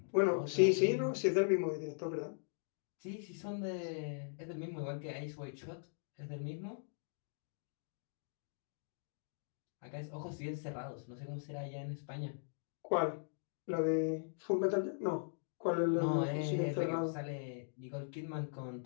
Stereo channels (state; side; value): silent; right; digital silence